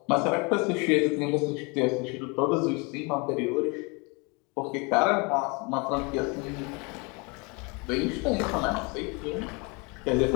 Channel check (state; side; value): quieter; right; 29.8 dB